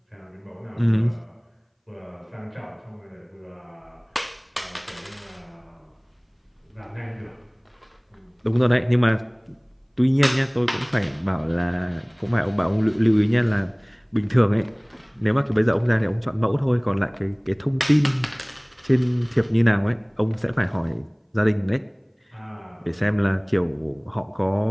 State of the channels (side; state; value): both; identical; correlation 1.00